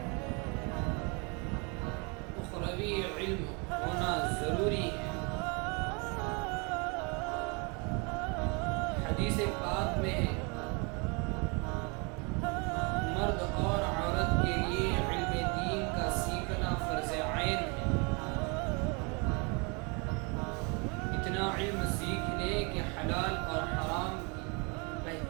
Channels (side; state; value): left; quieter; 31.8 dB